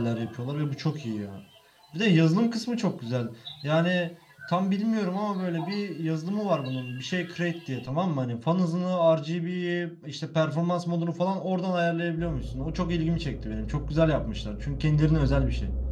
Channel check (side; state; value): both; identical; correlation 1.00